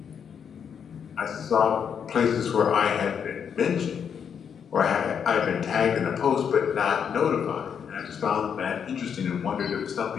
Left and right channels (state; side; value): quieter; right; 7.5 dB